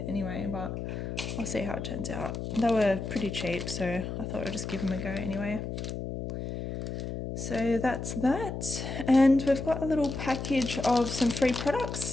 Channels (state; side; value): noise; left; hum, 5 dB below the sound